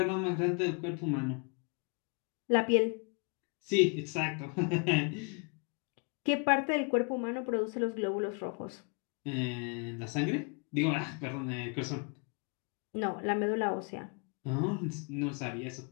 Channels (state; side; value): quieter; right; 35.4 dB